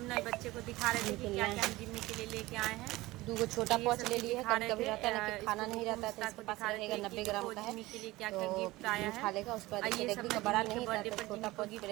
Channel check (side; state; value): left; quieter; 19.2 dB